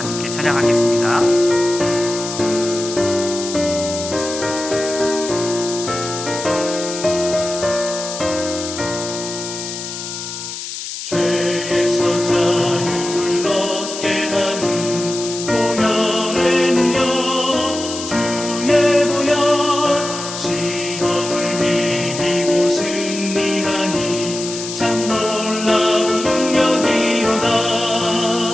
찬양하겠습니다. 죄에서 자유를 얻게 함은 보혈에는요 주의 보혈 시험을 이기고 승리하니 참 놀라운 능력이로다.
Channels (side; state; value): left; noise; hiss, 8 dB below the sound